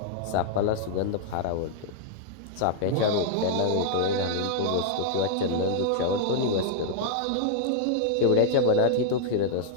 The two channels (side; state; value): both; different; correlation -0.01